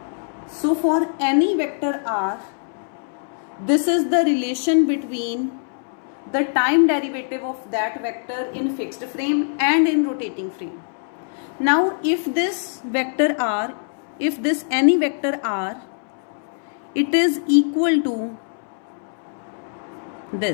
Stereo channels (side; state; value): right; silent; 63 dB below the other